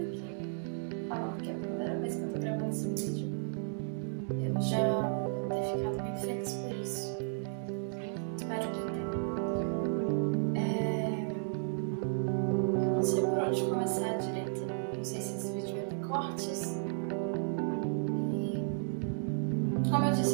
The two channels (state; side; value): silent; left; digital silence